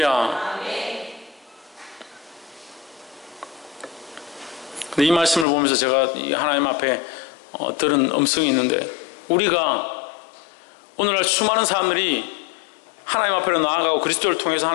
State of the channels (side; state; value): right; drops out; at 5.5 s